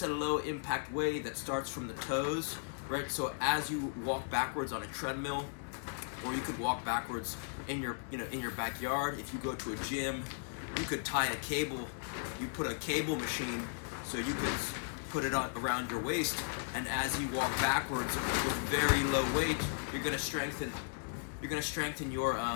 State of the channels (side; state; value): right; silent; digital silence